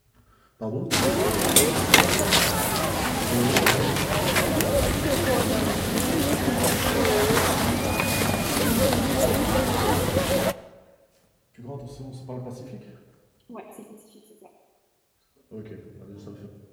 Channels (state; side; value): identical; both; correlation 1.00